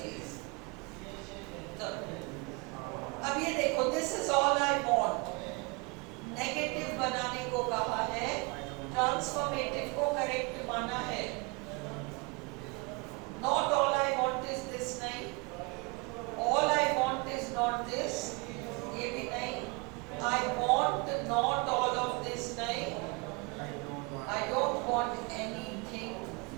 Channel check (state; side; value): quieter; left; 29.4 dB